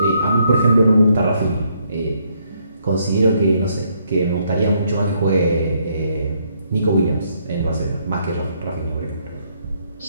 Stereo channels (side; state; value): both; inverted; correlation -0.72